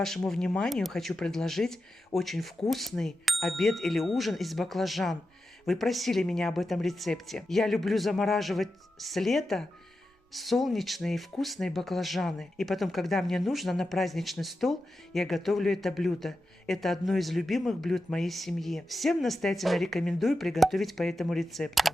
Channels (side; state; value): both; normal; correlation 0.90